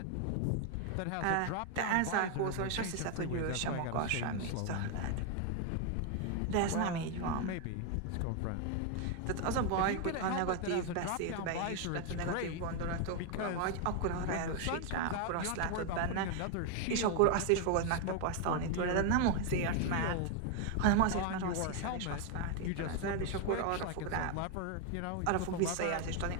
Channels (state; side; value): different; both; correlation 0.01